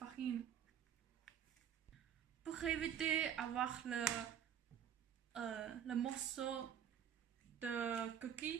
Pour éviter d'avoir le morceau de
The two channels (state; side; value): quieter; left; 9.1 dB